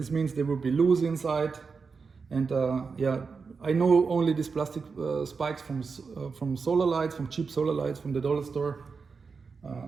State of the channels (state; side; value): quieter; left; 5.1 dB